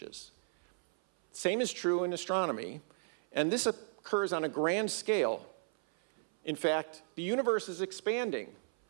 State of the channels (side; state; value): left; silent; 54 dB below the other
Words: Same is true in astronomy, and this occurs on a grand scale. In fact, the universe is expanding.